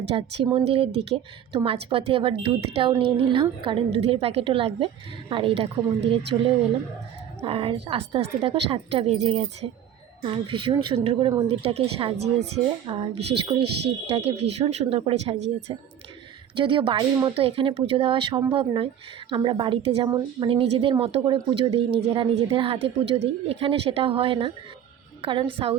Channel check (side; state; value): left; quieter; 9.7 dB